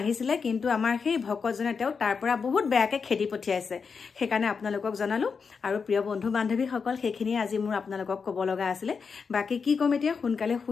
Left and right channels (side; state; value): right; quieter; 5.5 dB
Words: কিন্তু আমাৰ সেই ভকতজনে তেওঁ তাৰ পৰা বহুত বেয়াকে খেদি পঠিয়াইছে সেইকাৰণে আপোনালোকক জনালো আৰু প্ৰিয় বন্ধু বান্ধৱীসকল সেইখিনি আজি মোৰ আপোনালোকক ক'ব লগা আছিলে বাকি কি কম এতিয়া সোনকালে